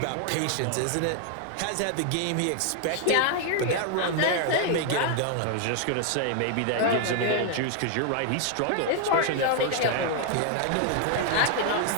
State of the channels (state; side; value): different; both; correlation 0.00